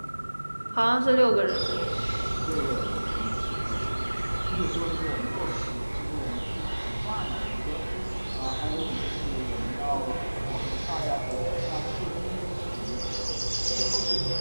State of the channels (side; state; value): both; inverted; correlation -1.00